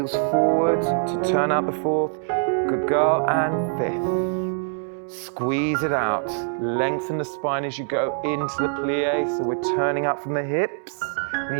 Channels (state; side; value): silent; left; digital silence